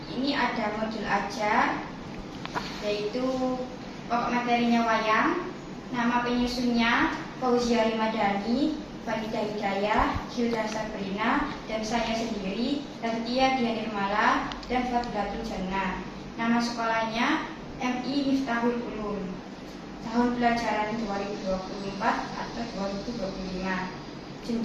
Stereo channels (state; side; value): identical; both; correlation 1.00